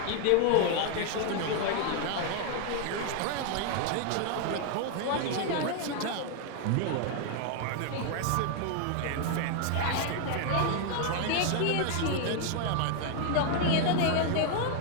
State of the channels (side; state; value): both; different; correlation 0.00